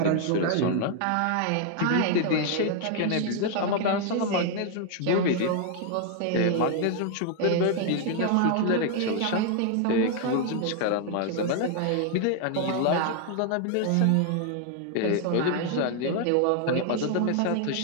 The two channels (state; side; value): different; both; correlation 0.00